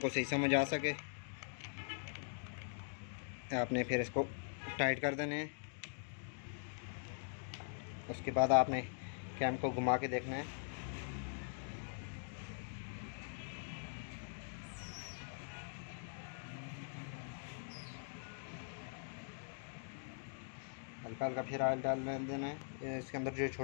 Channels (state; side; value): silent; right; digital silence